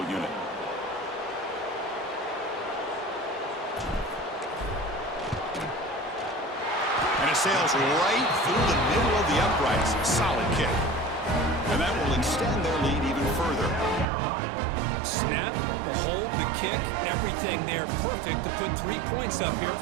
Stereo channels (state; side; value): drops out; left; at 14.1 s